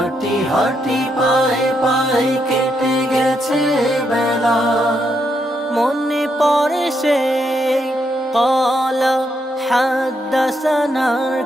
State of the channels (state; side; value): normal; both; correlation 0.79